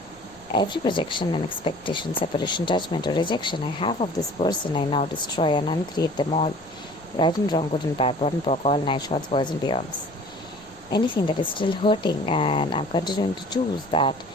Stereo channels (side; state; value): left; noise; rumble, 28 dB below the sound